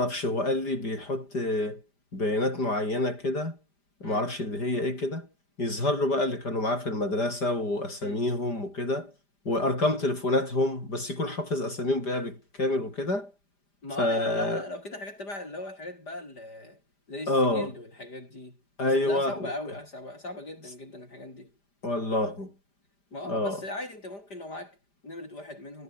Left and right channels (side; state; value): right; late; 5.0 ms